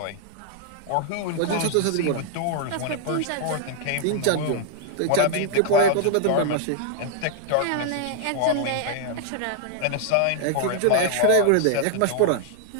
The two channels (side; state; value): both; different; correlation 0.00